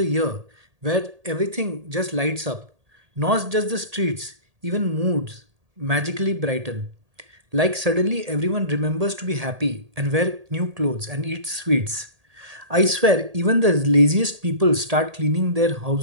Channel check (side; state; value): left; late; 1.8 ms